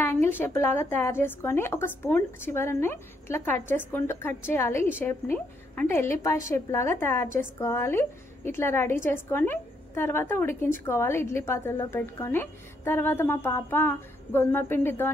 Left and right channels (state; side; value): normal; both; correlation 0.74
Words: షేప్ లాగా తయారు చేసుకొని ఒక స్పూన్ చివరని ఇట్లా కట్ చేయాలి. ఈ షేప్ని అంటే ఎల్లిపాయ షేప్ లాగా తయారు చేసుకోవాలి. ఇట్లా రెడీ చేసుకొని తర్వాత ఉడికించుకోవాలి ఇడ్లీ పాత్రలో పెట్టుకొని. తర్వాత మా పాప గోధుమ